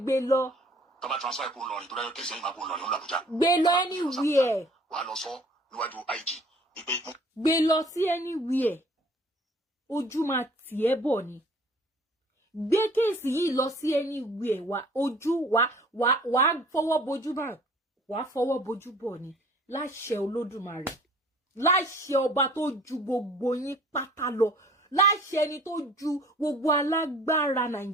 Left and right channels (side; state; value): both; normal; correlation 0.52